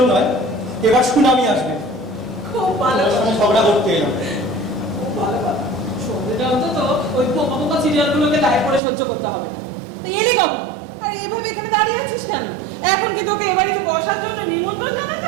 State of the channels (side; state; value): left; drops out; at 8.8 s